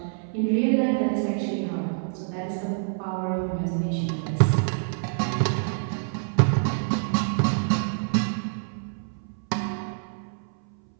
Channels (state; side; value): silent; left; 59 dB below the other